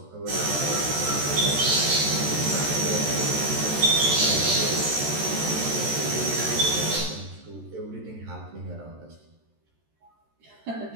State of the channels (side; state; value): left; late; 13 ms